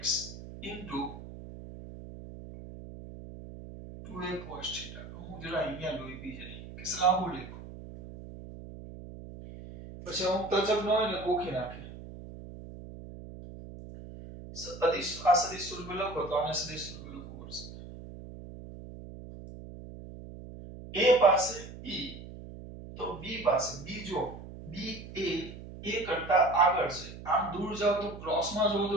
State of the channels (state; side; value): noise; right; hum, 13 dB below the sound